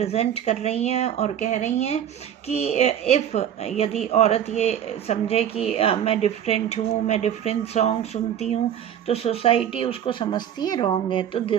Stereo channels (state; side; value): quieter; left; 9.8 dB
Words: कर रही हैं और कह रही हैं कि इफ़ यदि औरत ये समझे कि मैं डिफरेंट हूँ, मैं डिफरेंट सॉन्ग सुनती हूँ, तो सोसाइटी उसको समझती है रॉन्ग है। तो